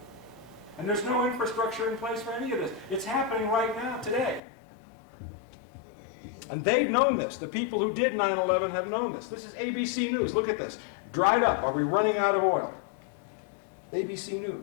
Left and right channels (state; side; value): drops out; right; at 4.4 s